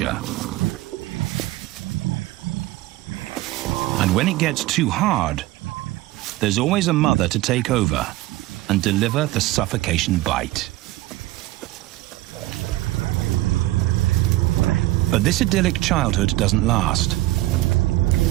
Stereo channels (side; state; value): left; quieter; 17.5 dB